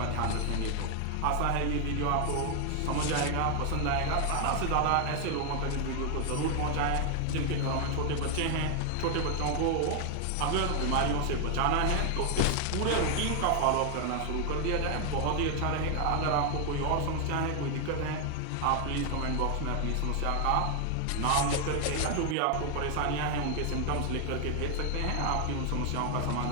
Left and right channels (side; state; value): both; different; correlation 0.00